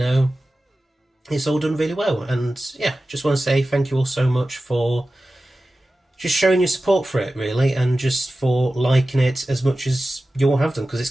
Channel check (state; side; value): normal; both; correlation 0.95